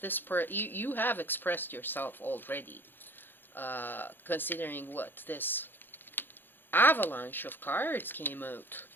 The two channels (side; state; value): right; late; 0.097 ms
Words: you have expressed yourself already, considering what this avalanche of cards came out.